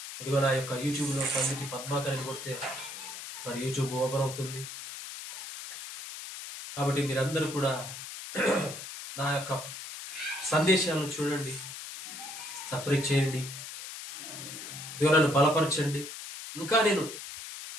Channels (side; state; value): left; noise; hiss, 10 dB below the sound